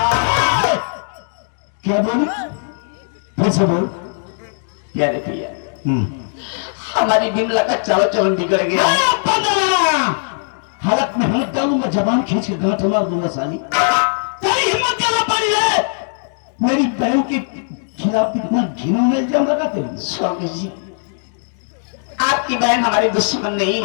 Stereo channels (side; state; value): right; silent; digital silence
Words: है। क्या बोली? फिर से बोल। प्यारे पिया, हमारी बिमला का चाल चलन बिगड़ गया है। हालत में हिम्मत डालूंगा, जबान खींच के गांठ मार दूंगा साली। तेरी हिम्मत क्या पड़ी है? मेरी बहन के खिलाफ इतना घिनौना इल्जाम लगाते हैं। स्वामी जी, आपकी बहन हमारी दुश्मन नहीं